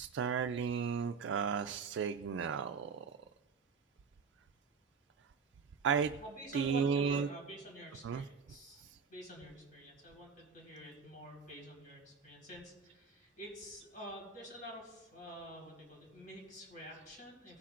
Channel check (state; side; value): quieter; left; 5.6 dB